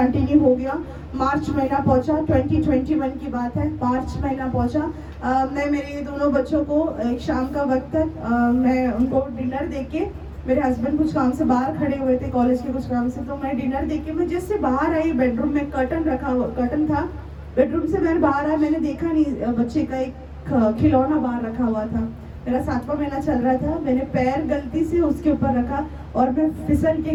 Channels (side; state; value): both; identical; correlation 1.00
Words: हो गया। मार्च महीना पहुंचा, 2021 की बात है, मार्च महीना पहुंचा। मैं मेरे दोनों बच्चों को एक शाम का वक्त तक मैं उनको डिनर दे के, मेरे हस्बैंड कुछ काम से बाहर खड़े हुए थे कॉलेज के कुछ काम से, तो मैं डिनर दे के मैं जैसे बाहर आई, बेडरूम में कर्टन था, बेडरूम से मैंने बाहर आया, मैंने देखा नहीं बच्चे का एक खिलौना बाहर रखा हुआ था। मेरा 7वां महीना चल रहा था, मैंने पैर गलती से उसके ऊपर रखा और मैं फिसल